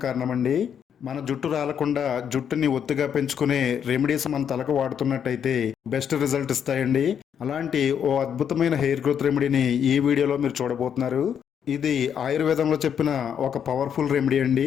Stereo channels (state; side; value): quieter; right; 8.2 dB